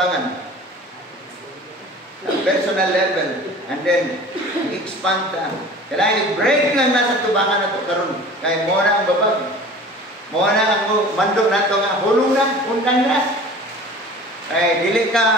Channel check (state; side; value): normal; both; correlation 0.42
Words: Personal level. And then, expand ka. Kailangan i-break lang nasa tubangan na ito karon. Kaya mo na ang babag. Mo na ang mandok na ito nga. Hulong na, undang na. Ay, dili